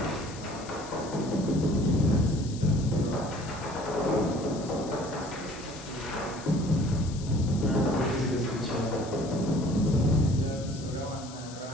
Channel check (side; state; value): left; noise; hiss, 16 dB below the sound